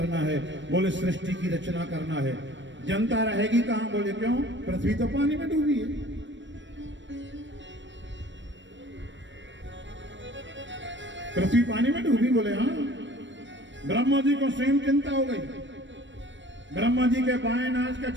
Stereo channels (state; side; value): late; left; 0.54 ms